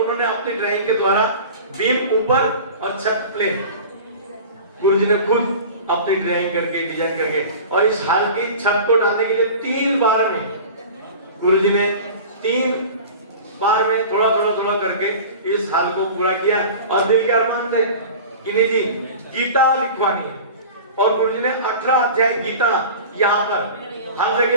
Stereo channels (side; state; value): both; inverted; correlation -0.37